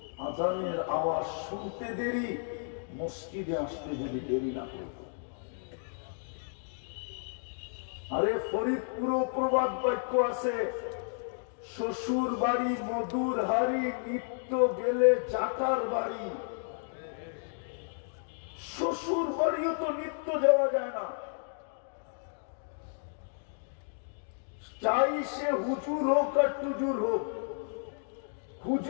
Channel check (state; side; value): silent; right; digital silence